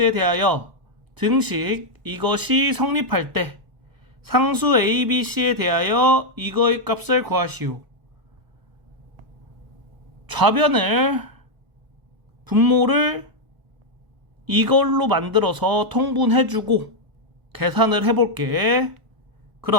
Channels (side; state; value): left; late; 1.1 ms